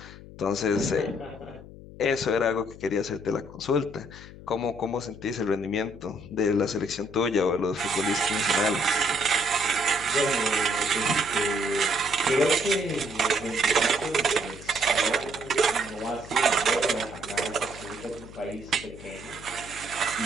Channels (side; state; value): left; noise; hum, 16 dB below the sound